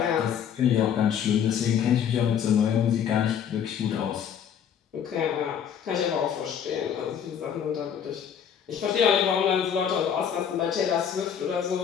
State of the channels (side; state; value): right; quieter; 8.3 dB